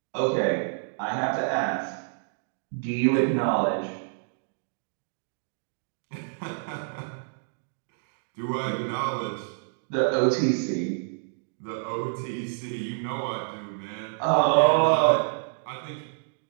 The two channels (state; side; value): silent; left; digital silence